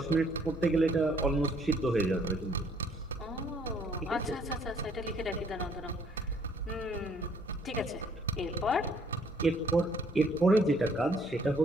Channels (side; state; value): both; normal; correlation 0.63